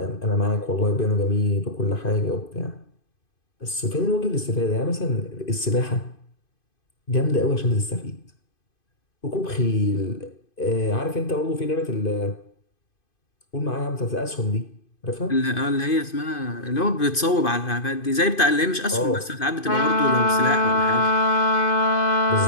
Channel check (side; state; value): right; late; 2.5 ms